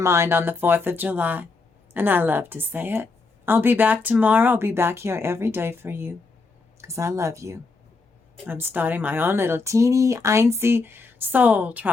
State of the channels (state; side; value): quieter; right; 4.0 dB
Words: on the 4th of July. And I love to say it. I'll be back tomorrow. I'll be back here every day for you. because I love you. I'm starting my own little teeny, einzy soul